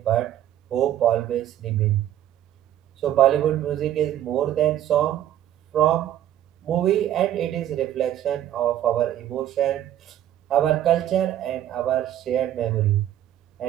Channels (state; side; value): quieter; left; 11.8 dB